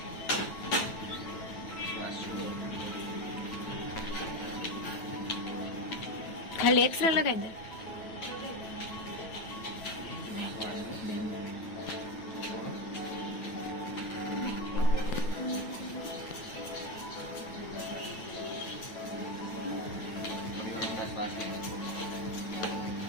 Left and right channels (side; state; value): right; late; 9.1 ms